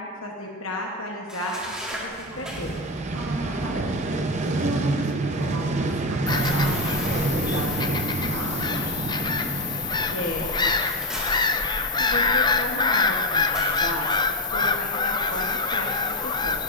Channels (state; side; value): normal; both; correlation 0.10